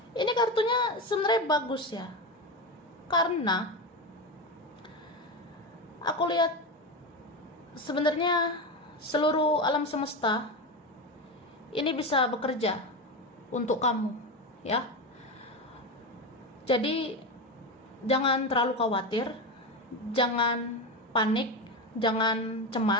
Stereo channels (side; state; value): both; normal; correlation 0.18